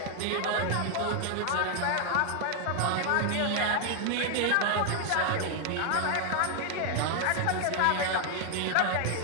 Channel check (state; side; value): different; both; correlation 0.00